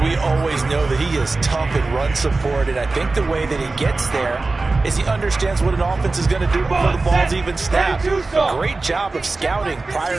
we always know that he is tough in run support, and I think the way that he gets there is he understands what an offense is going to do before the ball's even snapped. Great job of scouting prior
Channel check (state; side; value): quieter; left; 3.5 dB